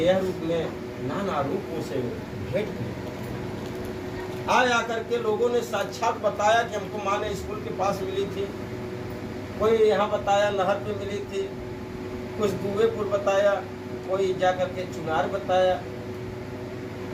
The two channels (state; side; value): identical; both; correlation 1.00